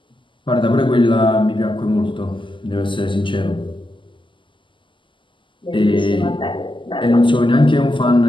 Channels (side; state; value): right; late; 0.24 ms